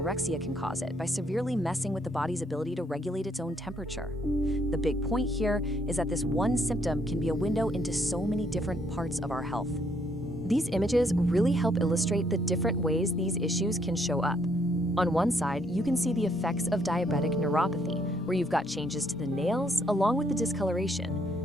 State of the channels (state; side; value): normal; both; correlation 0.70